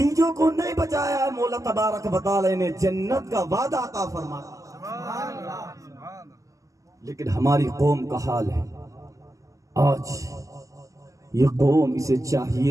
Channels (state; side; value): late; left; 0.16 ms